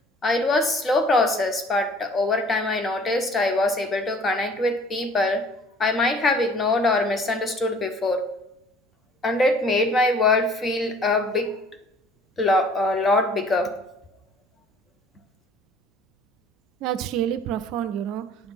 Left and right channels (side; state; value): both; normal; correlation 0.52